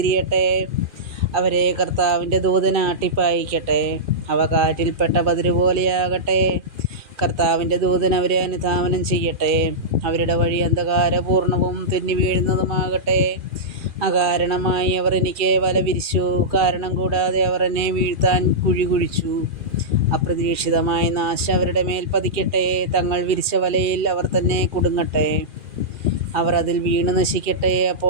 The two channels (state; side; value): late; left; 2.4 ms